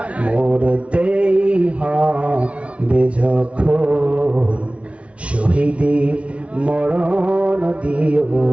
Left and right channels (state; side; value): late; left; 0.062 ms